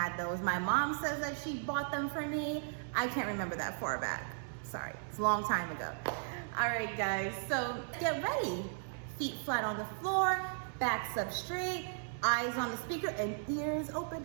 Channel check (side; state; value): left; silent; digital silence